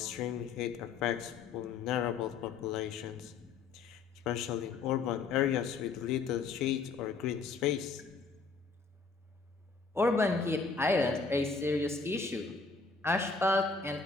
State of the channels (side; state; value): right; quieter; 4.6 dB